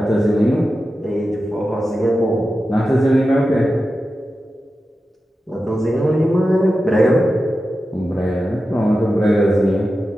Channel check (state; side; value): normal; both; correlation 0.92